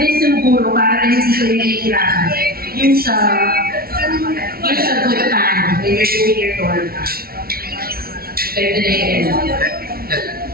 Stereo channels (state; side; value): late; left; 0.44 ms